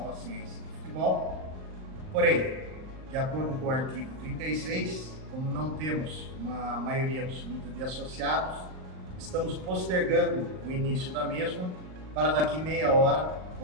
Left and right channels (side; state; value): left; late; 38 ms